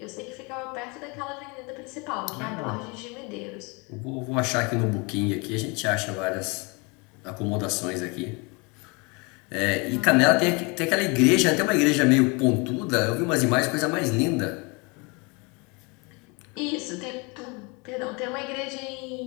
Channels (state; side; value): quieter; right; 29.5 dB